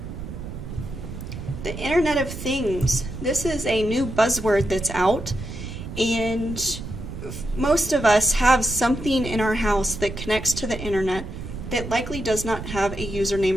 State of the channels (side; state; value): right; noise; rumble, 9 dB below the sound